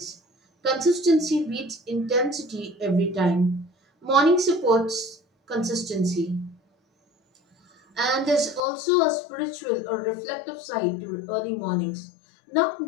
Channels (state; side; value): drops out; right; at 8.6 s